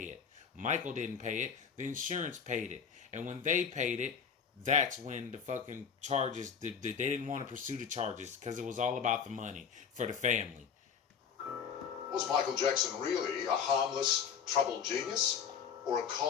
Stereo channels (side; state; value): right; quieter; 6.9 dB